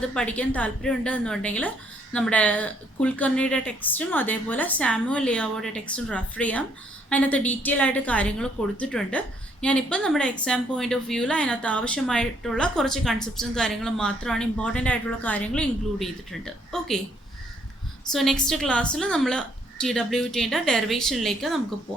പഠിക്കാൻ താല്പര്യമുണ്ട് എന്നുണ്ടെങ്കിൽ നമ്മുടെ കുൽക്കർണിയുടെ ടെക്സ്റ്റും അതേപോലെ സാമുവൽ ലിയാവോയുടെ ടെക്സ്റ്റും റെഫർ ചെയ്യാം. അതിനകത്ത് ഡീറ്റെയിൽ ആയിട്ട് കാര്യങ്ങൾ കൊടുത്തിട്ടുണ്ട്. ഞാനിപ്പോൾ നമ്മുടെ എക്സാം പോയിന്റ് ഓഫ് വ്യൂവിൽ അതിനകത്ത് ആവശ്യമായിട്ടുള്ള കുറച്ച് കൺസെപ്റ്റ്സും കാര്യങ്ങളും മാത്രമാണ്, ഇമ്പോർട്ടൻ്റ് ആയിട്ടുള്ള കാര്യങ്ങൾ ഇൻക്ലൂഡ് ചെയ്തിട്ടുണ്ട്. ഓക്കെ, സോ നെക്സ്റ്റ് ക്ലാസ്സിൽ നമ്മൾ TWTയുടെ ഡെറിവേഷനിലേക്ക് നമുക്ക്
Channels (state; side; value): normal; both; correlation 0.68